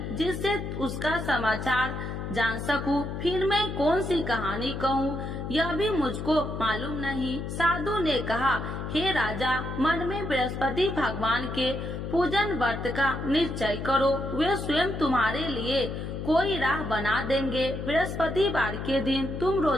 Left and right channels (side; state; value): left; noise; hum, 5 dB below the sound